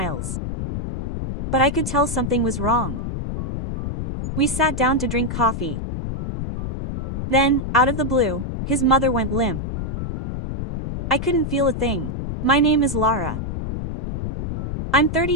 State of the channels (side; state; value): left; noise; rumble, 3 dB below the sound